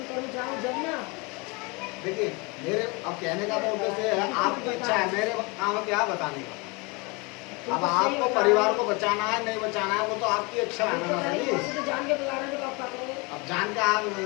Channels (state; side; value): quieter; right; 28.1 dB